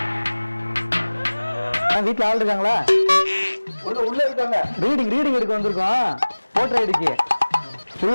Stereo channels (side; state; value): both; inverted; correlation -1.00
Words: வீட்டுல ஆள் இருக்காங்களா? உள்ள இருக்காங்க. ரீடிங் எடுக்க வந்திருக்கோம். போட்டோ ஐடிக்கு உள்ள